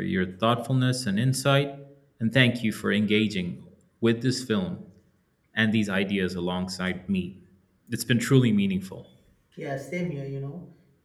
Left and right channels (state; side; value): identical; both; correlation 1.00